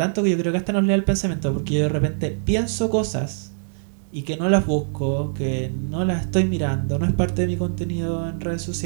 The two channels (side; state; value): left; silent; digital silence